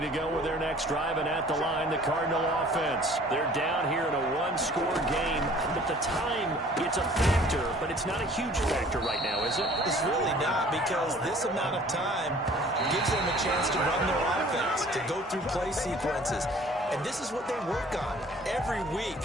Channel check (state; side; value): normal; both; correlation 0.51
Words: to go with their next drive, and at the line, the Cardinal offense. They're down here in a one-score game, but the time, it's a factor, but it's not a huge factor right now, is it? It's really not, because this amount of time gives them a chance to run their offense, to go through play sequences. And this is what they work on every week